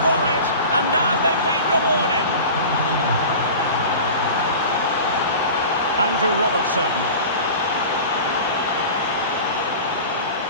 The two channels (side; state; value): both; inverted; correlation -0.36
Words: for it. And now they've been rewarded. Andrew Robertson.